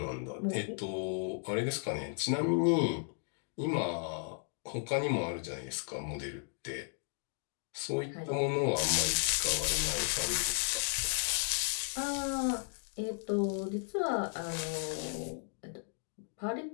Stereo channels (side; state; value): right; silent; 55 dB below the other